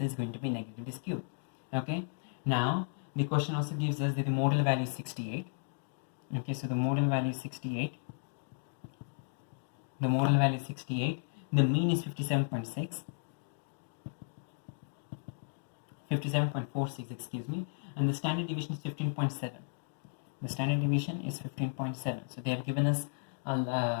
is going to be negatively skewed. Okay, now the question also gives us that the modal value is 68. Okay, so the modal value is 68. The modal value is 68. The mean is 57.6. 57.46, excuse me, and the standard deviation is 15.7. The standard deviation is 15.7. So they have given us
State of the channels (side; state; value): right; silent; digital silence